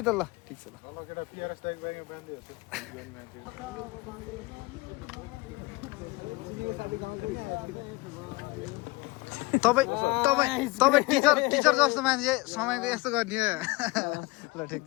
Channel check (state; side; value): quieter; right; 23.1 dB